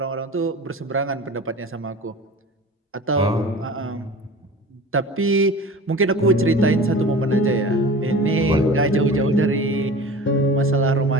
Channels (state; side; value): normal; both; correlation 0.37